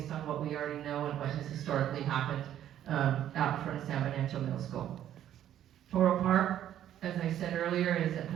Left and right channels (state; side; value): quieter; left; 11.2 dB